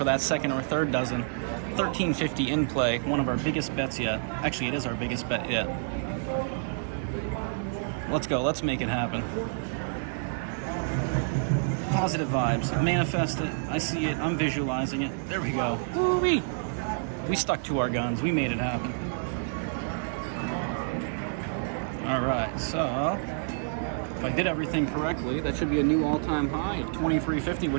that second or third dozen. 1350 in play. One of our biggest bets yet. Actually, it is our biggest bet yet. Let's go. Let's make it happen. Positive vibes. Manifest it. I see it. I'm visualizing it. There we go. Woo-wee. We stuck to our guns. We made it happen. All right, so if I did everything correctly, that should be a new all-time high of 2350,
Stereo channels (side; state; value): left; silent; digital silence